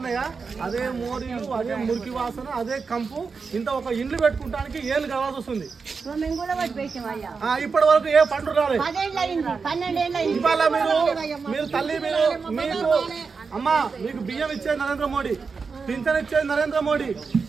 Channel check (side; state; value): left; quieter; 5.0 dB